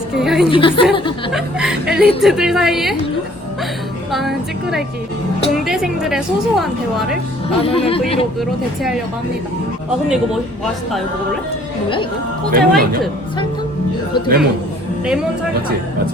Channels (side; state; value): both; normal; correlation 0.57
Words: 엘리트들 사이에 나는 찌끄레기 공대생들의 소소한 대화를 나누는 브이로그로 대체하려고 합니다. 아 근데 이거 맛있다. 이거 먹을래? 뭐야 이거? 호재 레몬 화이트 아니야? 설탕? 어떻게 레몬. 먹어? 레몬 설탕. 맞지? 맞지?